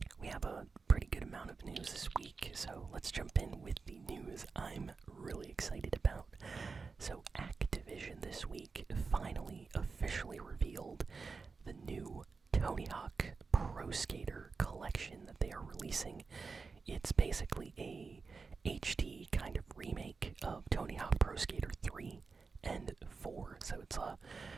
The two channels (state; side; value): quieter; left; 4.6 dB